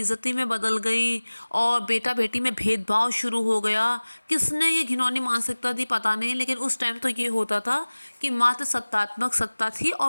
में बदल गई और बेटा बेटी में भेदभाव शुरू हो गया। किसने ये घिनौनी मानसिकता दी पता नहीं, लेकिन उस टाइम तो ये होता था कि मात्र सत्तात्मक सत्ता थी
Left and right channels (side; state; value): both; inverted; correlation -1.00